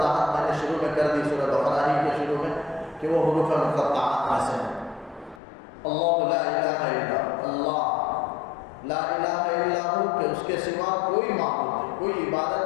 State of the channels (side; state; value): right; drops out; at 5.4 s